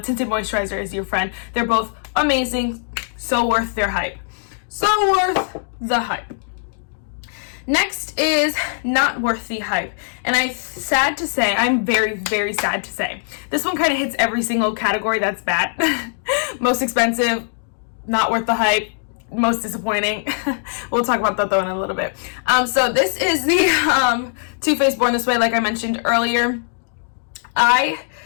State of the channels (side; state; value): right; silent; digital silence